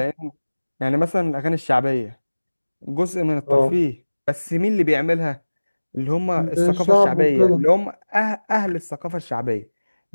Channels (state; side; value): inverted; both; correlation -1.00